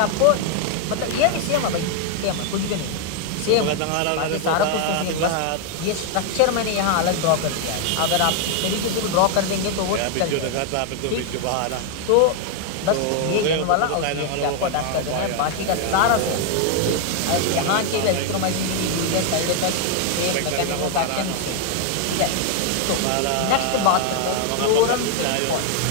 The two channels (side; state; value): both; different; correlation 0.00